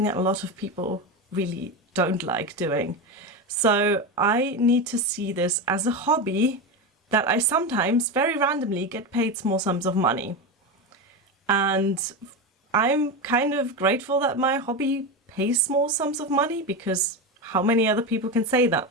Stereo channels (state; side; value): normal; both; correlation 0.17